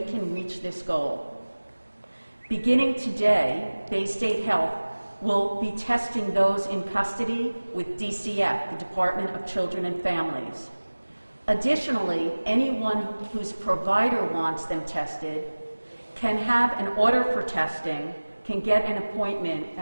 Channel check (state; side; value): inverted; both; correlation -1.00